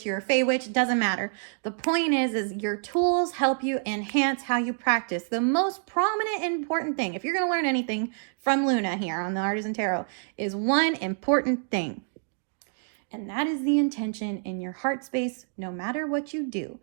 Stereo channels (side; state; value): left; silent; 60 dB below the other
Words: you're a Fey witch, it doesn't matter. The point is your tools help you enhance how you practice. The most prominent and important thing, if you're going to learn anything from Luna here on the Artisan Tarot, is one important thing. And that is the intention in your heart space, no matter what you do,